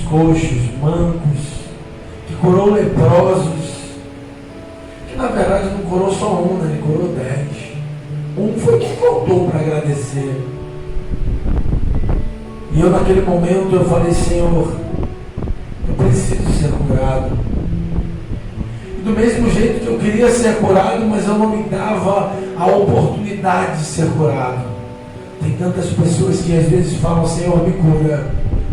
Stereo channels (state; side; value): identical; both; correlation 1.00